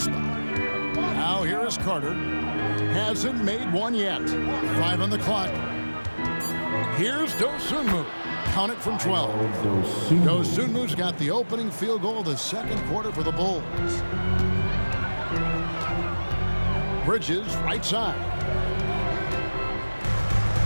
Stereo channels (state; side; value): inverted; both; correlation -1.00